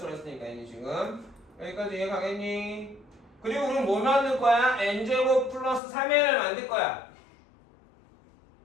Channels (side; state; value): right; drops out; at 5.8 s